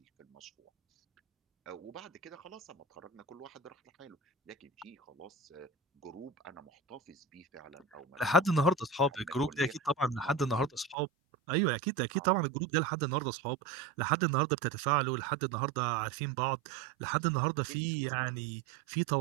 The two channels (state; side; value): drops out; left; at 11.0 s